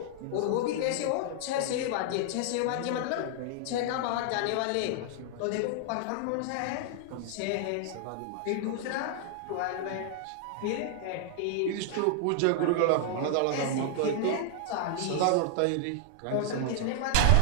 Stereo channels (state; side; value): different; both; correlation -0.01